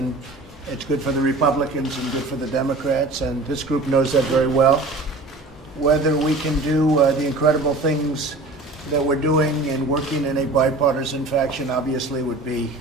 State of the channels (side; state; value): left; quieter; 3.0 dB